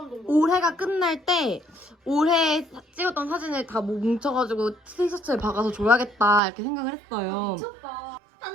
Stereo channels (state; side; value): drops out; left; at 6.4 s